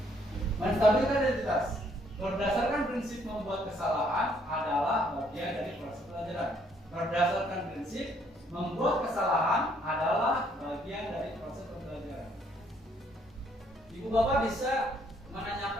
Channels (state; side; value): normal; both; correlation 0.67